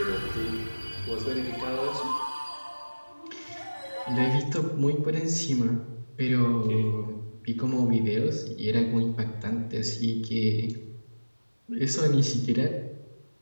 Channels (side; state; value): both; inverted; correlation -1.00